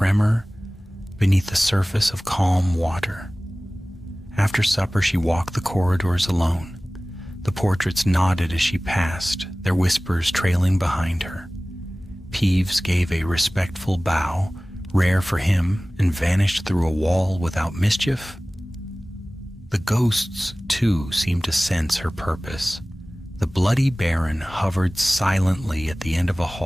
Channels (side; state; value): both; normal; correlation 0.98